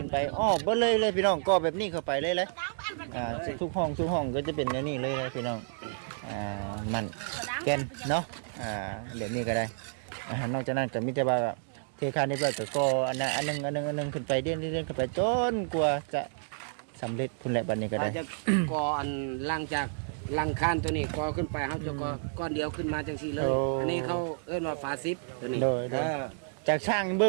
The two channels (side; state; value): left; silent; digital silence